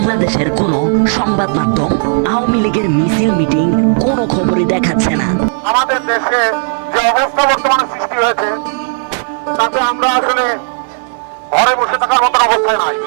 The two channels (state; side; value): silent; left; 59 dB below the other